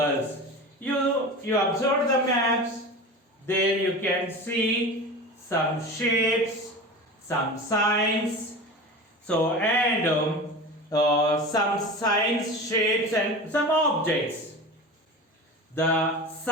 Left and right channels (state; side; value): normal; both; correlation 0.31